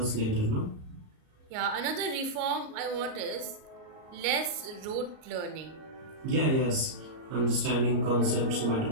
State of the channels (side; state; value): left; late; 38 ms